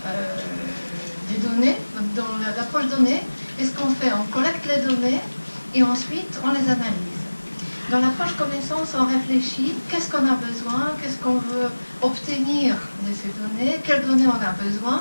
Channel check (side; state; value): both; inverted; correlation -1.00